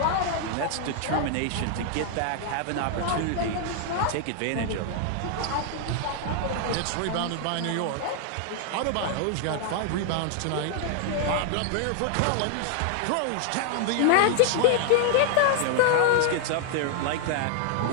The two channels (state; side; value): different; both; correlation 0.00